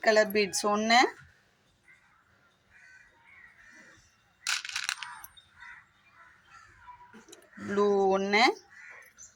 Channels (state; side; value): identical; both; correlation 1.00